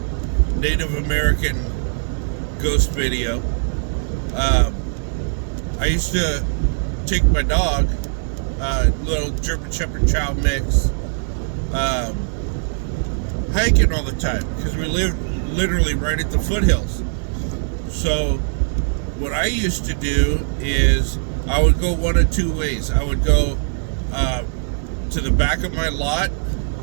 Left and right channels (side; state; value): left; silent; digital silence